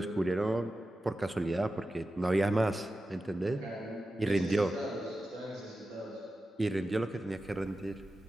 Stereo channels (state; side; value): normal; both; correlation 0.92